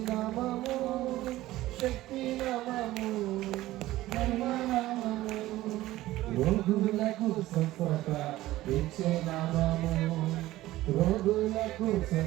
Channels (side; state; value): left; quieter; 16.2 dB